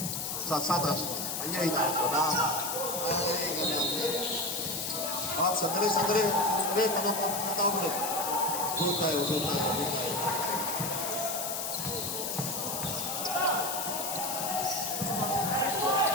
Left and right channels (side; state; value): left; noise; hiss, 3 dB below the sound